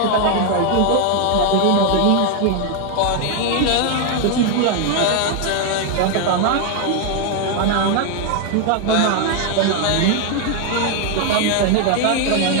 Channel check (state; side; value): different; both; correlation 0.01